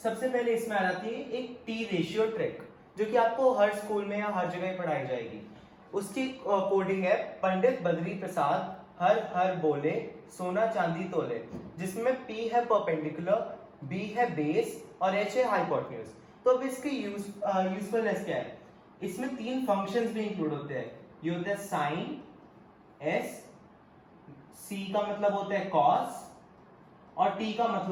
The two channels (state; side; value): identical; both; correlation 1.00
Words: सबसे पहले इसमें आ जाती है एक टी रेशियो ट्रिक, जो कि आपको हर स्कूल में या हर जगह पढ़ाई जाएगी। उसकी कोडिंग है पंडित बद्री प्रसाद हर हर बोले सोना चांदी तोले, जिसमें P है परपेंडिकुलर, B है बेस और H है हाइपोटेन्यूज। तो अब इसकी यूजफुलनेस क्या है। इसमें तीन फंक्शंस भी इंक्लूड होते हैं। ये होते हैं साइन, S, C का मतलब होता है कॉस और T का